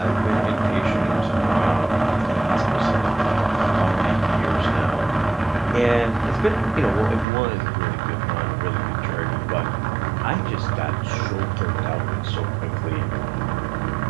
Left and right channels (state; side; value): drops out; left; at 7.2 s